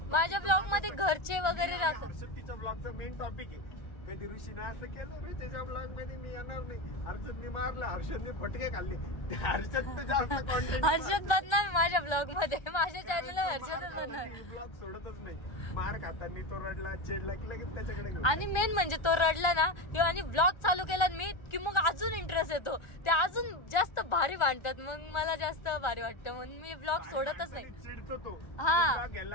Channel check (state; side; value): late; right; 1.4 ms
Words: माझ्या ब्लॉग मध्ये घरचे वगैरे राहतात. तिच्या ब्लॉगचा मेन टॉपिक आहे कधी ऋषीने असं केलं रे त्याच्या ब्लॉग मध्ये मी येणार नाही, हर्षदने मारलं, हर्षदने फटके खाल्ले. हर्षद जास्त कॉन्टेंट, हर्षद बनणार माझ्या ब्लॉग मध्ये, माझ्या चॅनलला हर्षदच बनणार. ब्लॉग सोडतच नाही. मार खाताना तो रडला, चिडला की लगेच त्याच्याकडे. आणि मेन म्हणजे तो रडला ना किंवा आणि ब्लॉग चालू केला मी की मग अजून इंटरेस्ट येतो, ते अजून जास्त भारी वाटतात. मग मला जास्त भारी वाटतं म्हणून मी ब्लॉग सोडतच नाही. चिडतो तो, हा